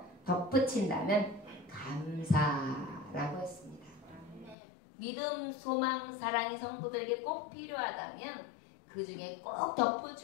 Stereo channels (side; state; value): right; drops out; at 4.5 s